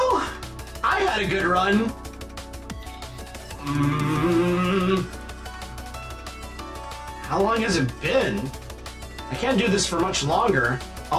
I had a good run. How long has it been? I can't do this for much longer.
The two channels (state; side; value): identical; both; correlation 1.00